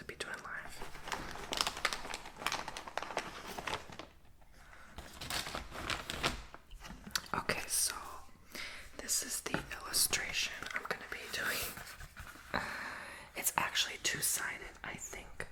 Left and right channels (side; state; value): both; identical; correlation 1.00